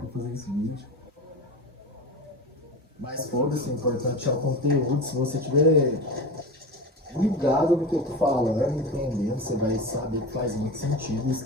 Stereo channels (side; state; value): both; normal; correlation 0.27